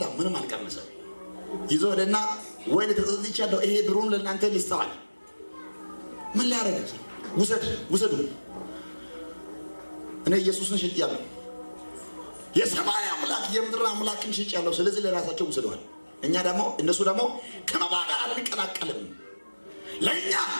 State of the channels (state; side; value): inverted; both; correlation -1.00